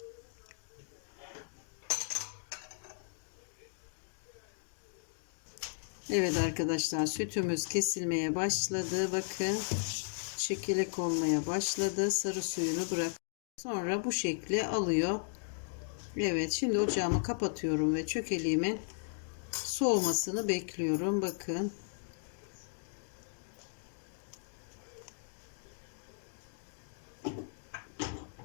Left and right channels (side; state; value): right; silent; digital silence